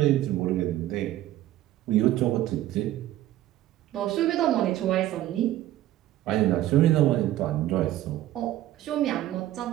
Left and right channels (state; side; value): quieter; left; 14.0 dB